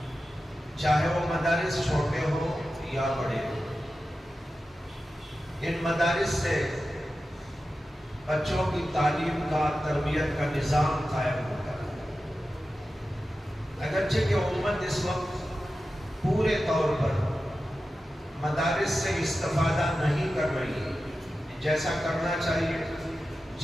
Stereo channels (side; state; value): both; normal; correlation 0.93